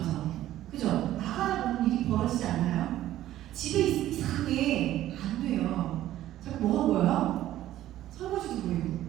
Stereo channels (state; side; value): quieter; left; 13.6 dB